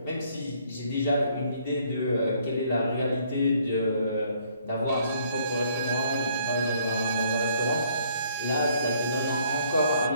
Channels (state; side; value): inverted; both; correlation -0.64